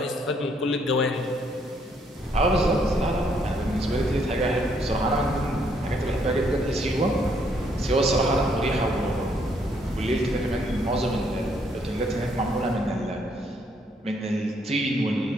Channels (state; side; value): normal; both; correlation 0.70